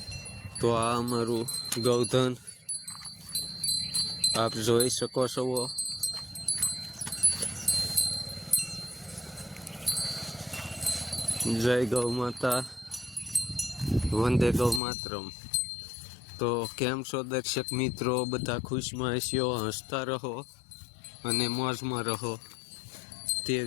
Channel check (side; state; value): right; drops out; at 14.8 s